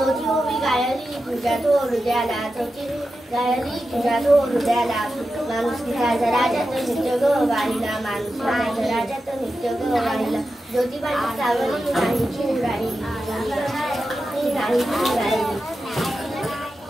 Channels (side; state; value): both; normal; correlation 0.91